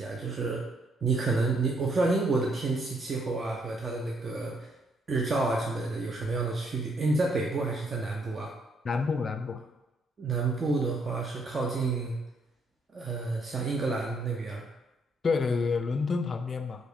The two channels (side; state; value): both; normal; correlation 0.71